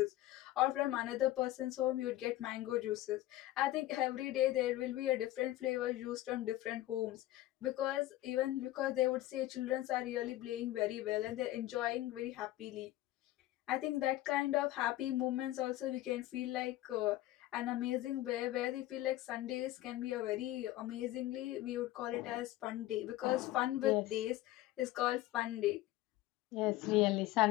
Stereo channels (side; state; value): right; quieter; 15.6 dB